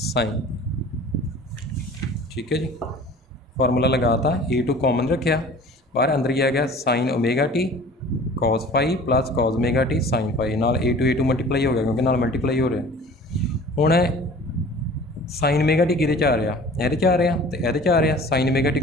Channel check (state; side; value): normal; both; correlation 0.45